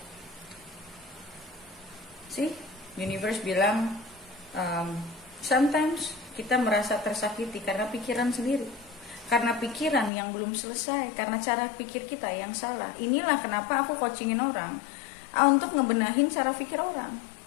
Universe bilang sometimes kita merasa tersakiti karena pikiran sendiri, karena pikiran yang belum selesai, karena cara pikir kita yang salah. Inilah kenapa aku coachingin orang untuk ngebenahin cara pikir orang.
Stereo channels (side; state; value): right; drops out; at 10.1 s